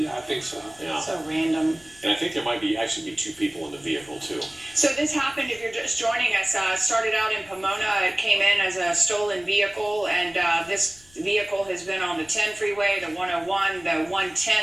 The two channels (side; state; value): left; noise; rumble, 27 dB below the sound